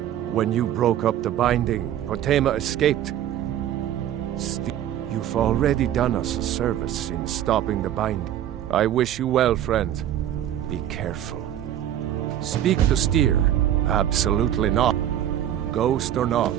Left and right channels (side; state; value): left; quieter; 11.3 dB